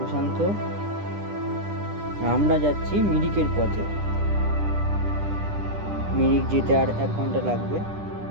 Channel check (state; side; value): late; left; 10 ms